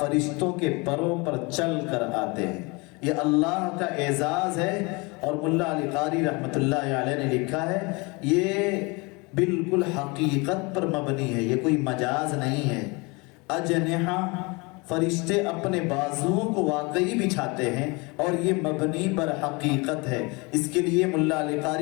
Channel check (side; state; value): right; quieter; 27.5 dB